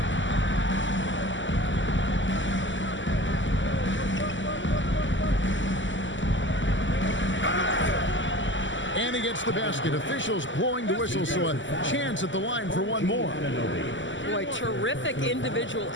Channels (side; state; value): right; late; 0.55 ms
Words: And he gets the basket. Officials blowing the whistle, so a chance at the line for one more. Boy, terrific individual